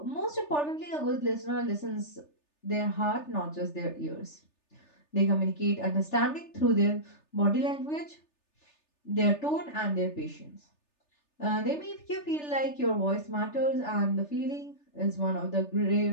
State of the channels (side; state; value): right; late; 3.3 ms